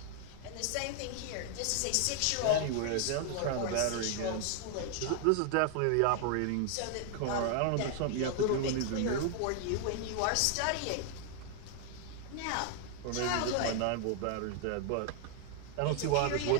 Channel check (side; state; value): both; different; correlation 0.00